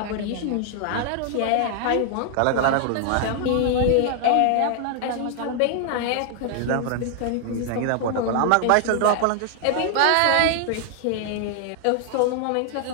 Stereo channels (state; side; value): different; both; correlation 0.00